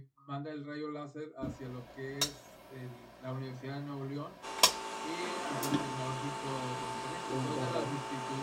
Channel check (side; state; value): both; identical; correlation 1.00